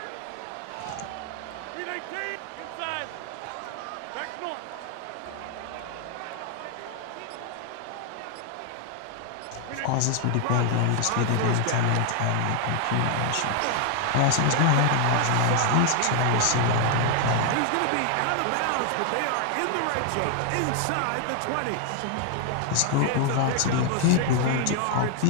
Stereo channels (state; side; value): different; both; correlation 0.00